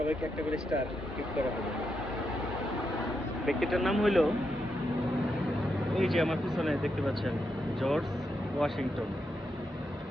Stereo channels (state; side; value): normal; both; correlation 0.83